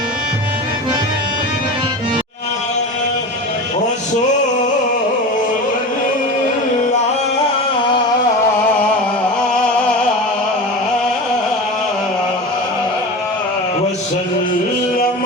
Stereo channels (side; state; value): both; normal; correlation 0.29